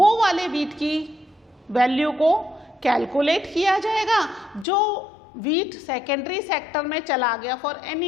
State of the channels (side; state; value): right; drops out; at 4.7 s